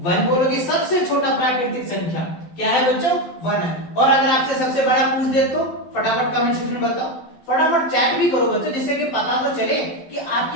1 बोलोगे। सबसे छोटा प्राकृतिक संख्या क्या है बच्चों, 1 है। और अगर आपसे सबसे बड़ा पूछ दे तो फटाफट कमेंट सेक्शन में बताओ, फटाफट चैट भी करो बच्चों, जिससे कि पता तो चले कि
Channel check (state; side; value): late; right; 12 ms